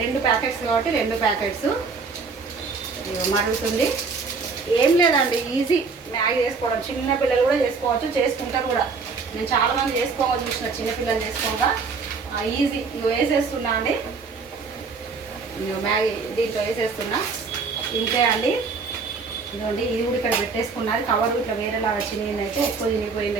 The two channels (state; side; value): quieter; left; 4.7 dB